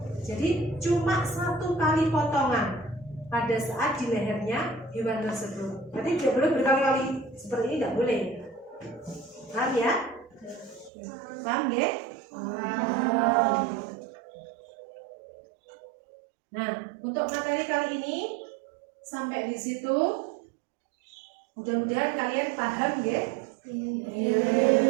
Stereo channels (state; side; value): drops out; left; at 10.9 s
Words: Jadi cuma 1 kali potongan pada saat di lehernya hewan tersebut. Berarti tidak boleh berkali-kali seperti ini, tidak boleh. Paham ya? Paham ya? Nah, untuk materi kali ini sampai di situ. Mudah-mudahan kalian paham ya.